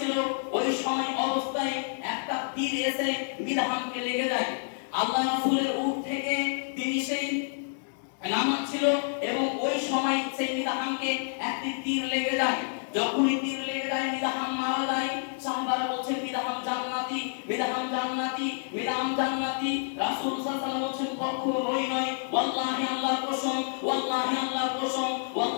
ওই সময় অবস্থায় একটা তীর এসে মিদহামকে লেগে যায়। আল্লাহ রাসূলের উট থেকে তিনি সেই নামাচ্ছিল এবং ওই সময় সেই মিদহামকে একটি তীর লেগে যায়। যখনই তীর লেগে যায়, মিদহাম মারা যায়। সাহাবারা বলছেন মিদহাম জান্নাতি, মিদহাম জান্নাতি, মিদহাম জান্নাতি। রাসূল সাল্লাল্লাহু আলাইহি ওয়াসাল্লাম বলছেন কখনোই নয়, ওয়াল্লাহি আল্লাহর কসম, ওয়াল্লাহি আল্লাহর কসম,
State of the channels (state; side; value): silent; right; digital silence